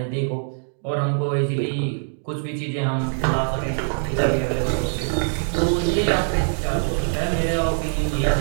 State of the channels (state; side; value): silent; left; digital silence